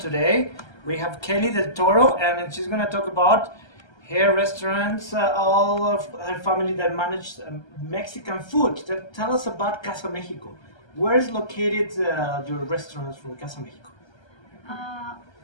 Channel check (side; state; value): right; late; 1.3 ms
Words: we have Kelly Del Toro, and she's going to talk about her restaurants, all of her family that manage Mexican food. Tell us about Casa Mexico. Where is located your restaurants from Casa Mexico?